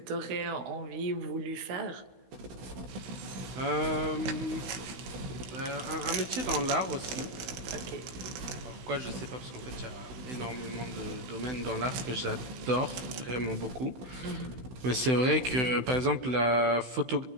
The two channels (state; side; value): late; left; 16 ms